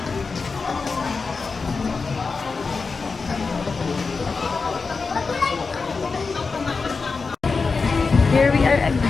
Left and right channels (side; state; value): right; quieter; 4.5 dB